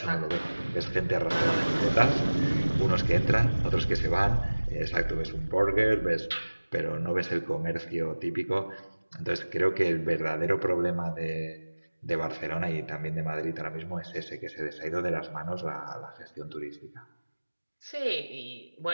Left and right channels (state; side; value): inverted; both; correlation -1.00